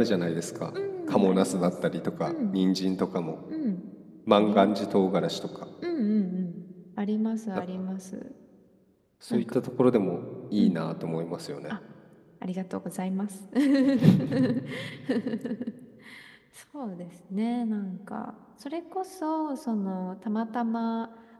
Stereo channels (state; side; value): identical; both; correlation 1.00